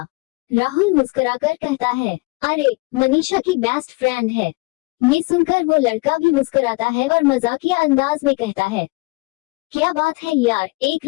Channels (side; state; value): right; quieter; 25.3 dB